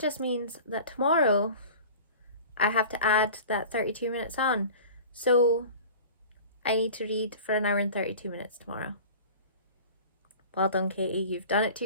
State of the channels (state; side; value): inverted; both; correlation -0.40